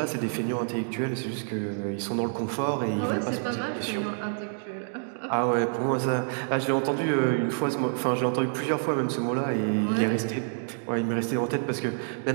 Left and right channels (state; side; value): silent; left; digital silence